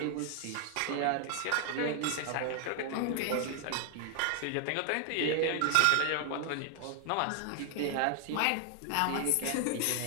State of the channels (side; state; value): both; different; correlation 0.00